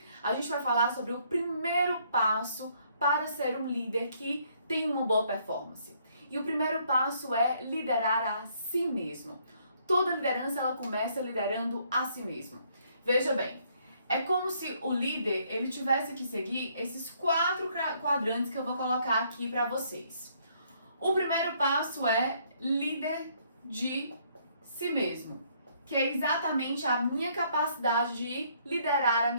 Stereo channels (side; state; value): both; inverted; correlation -0.67